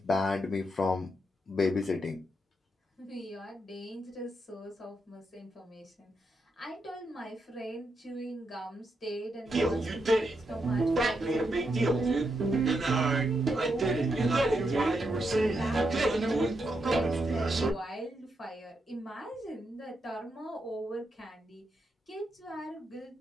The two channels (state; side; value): normal; both; correlation 0.82